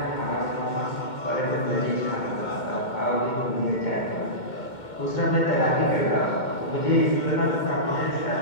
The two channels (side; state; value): right; late; 2.2 ms